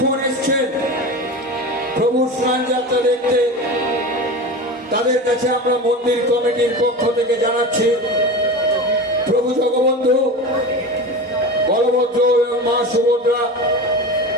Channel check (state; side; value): normal; both; correlation 0.28